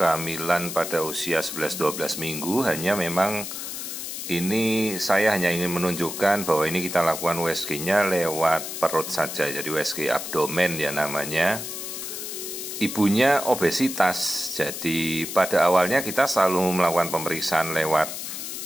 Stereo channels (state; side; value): noise; left; hiss, 7 dB below the sound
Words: pada usia 11-12 minggu. Hanya memang ini saya hanya ingin menunjukkan bahwa ini kita lakukan USG-nya lewat perut saja. Jadi USG abdomen ya namanya. Ibunya obesitas. Jadi pada awalnya kita selalu melakukan pemeriksaan lewat